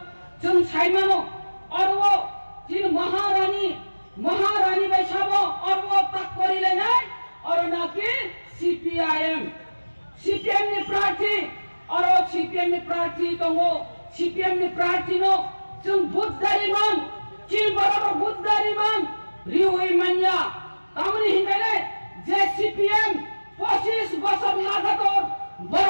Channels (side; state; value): both; inverted; correlation -1.00